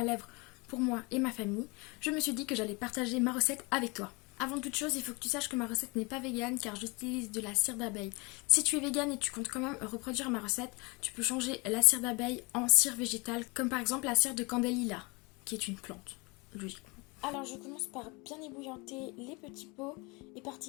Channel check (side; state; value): right; quieter; 27.6 dB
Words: lèvres pour moi et ma famille, je me suis dit que j'allais partager ma recette avec toi. Avant toute chose, il faut que tu saches que ma recette n'est pas végane car j'utilise de la cire d'abeille. Si tu es végane et tu comptes quand même reproduire ma recette, tu peux changer la cire d'abeille en cire végétale, comme par exemple la cire de candélila, qui est une plante, logiquement. Alors je commence par bien ébouillanter les petits pots, et